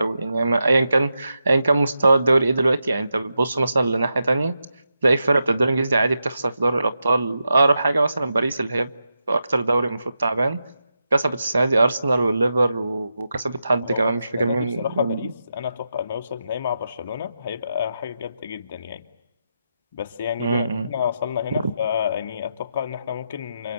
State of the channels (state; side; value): inverted; both; correlation -0.87